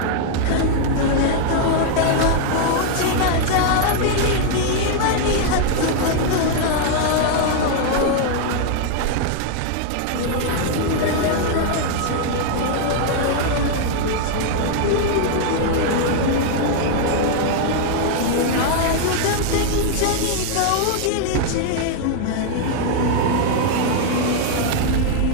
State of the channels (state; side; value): different; both; correlation 0.00